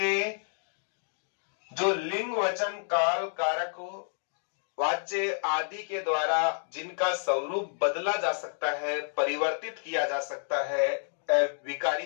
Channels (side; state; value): right; silent; digital silence